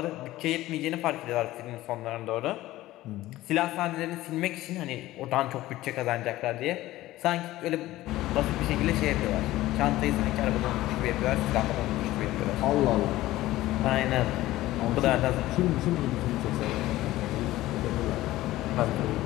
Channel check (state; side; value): quieter; right; 16.4 dB